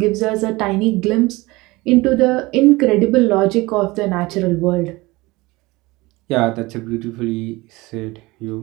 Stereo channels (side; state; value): left; quieter; 21.8 dB